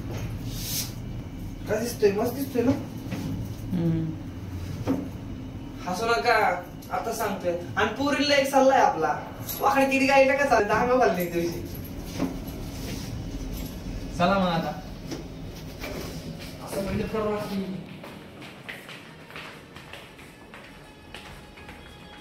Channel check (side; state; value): both; identical; correlation 1.00